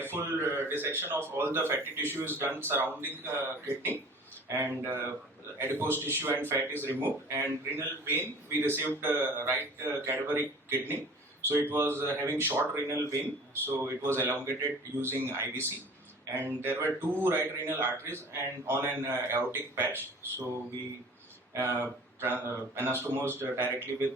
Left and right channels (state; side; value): normal; both; correlation 0.44